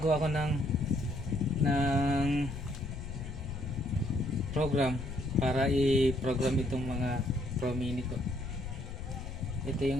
ko ng program para i-program itong mga Pro Mini ko. Ito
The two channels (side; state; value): left; noise; rumble, 8 dB below the sound